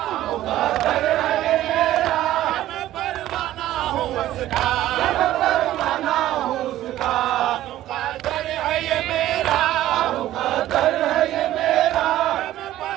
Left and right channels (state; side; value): quieter; left; 14.0 dB